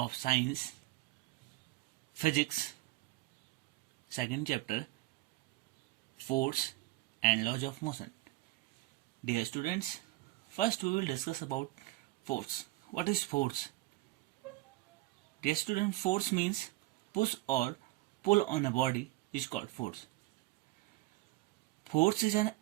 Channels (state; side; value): quieter; left; 19.3 dB